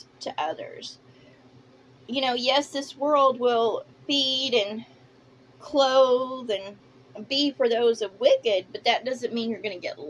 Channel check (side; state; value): both; identical; correlation 1.00